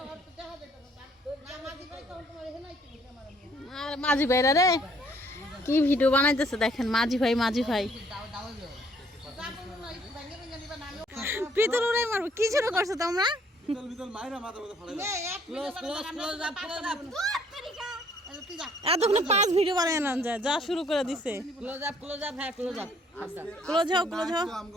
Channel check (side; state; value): both; normal; correlation 0.63